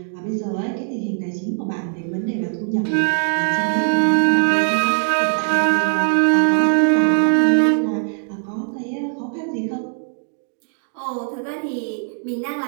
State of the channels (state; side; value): silent; left; 59 dB below the other